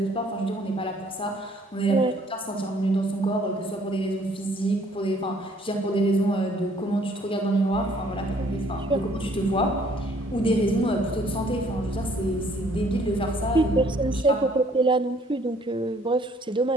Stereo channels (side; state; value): both; normal; correlation 0.61